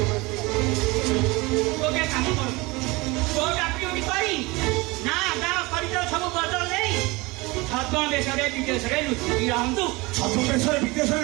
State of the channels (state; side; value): quieter; left; 23.6 dB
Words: তোকে কাম কর তোর চাকরি করি না গাঁ କରିଛ ସବୁ ବଦଳ ନେଇ ଛଦ୍ମ ଦେଶରେ ବିଦେଶରେ ଲୁଚି ରହନ୍ତୁ ছদ্ম দেশরে বিদেশরে